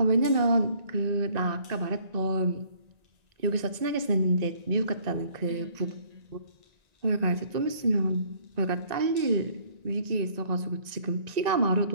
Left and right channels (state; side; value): late; left; 1.9 ms